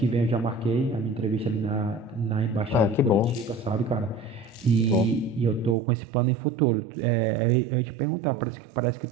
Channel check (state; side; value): drops out; left; at 5.8 s